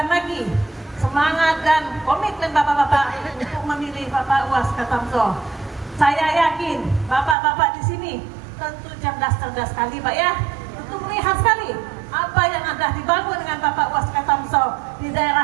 lagi semangat dan komitmen bapak-bapak untuk memilih Bapak Uwas Ketamso. Saya yakin bapak-bapak di sini tentu cerdas-cerdas sekali Pak ya, tentu melihat sekali apa yang ada dibangun dengan Bapak Uwas Ketamso di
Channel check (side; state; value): left; drops out; at 7.4 s